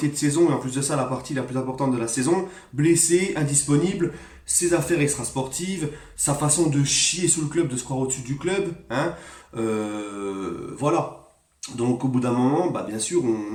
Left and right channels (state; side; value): identical; both; correlation 1.00